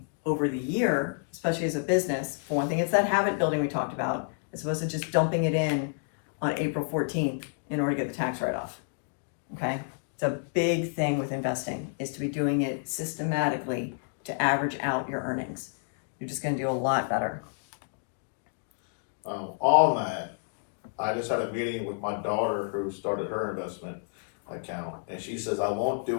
over the year, especially as a business. For one thing, it's that habit building we talked about, as opposed to just dumping it in on April 14th in order to get the tax write-off, okay? It's a big thing with investing, is to be doing it systematically to average out your earnings. You're just going to do a lot better. On that, I just had a meeting with my daughter who started her investment account, and she says, I won't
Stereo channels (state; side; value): silent; right; digital silence